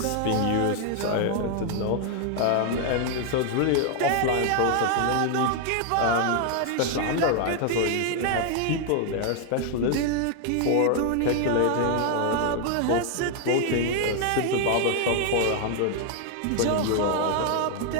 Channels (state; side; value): different; both; correlation 0.00